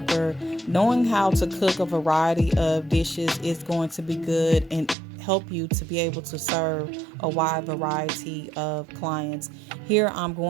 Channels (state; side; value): drops out; left; at 5.0 s